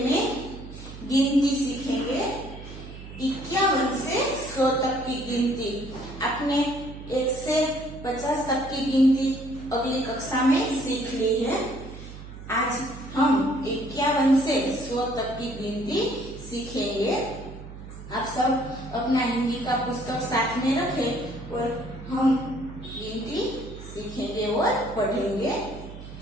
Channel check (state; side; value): noise; right; hum, 13 dB below the sound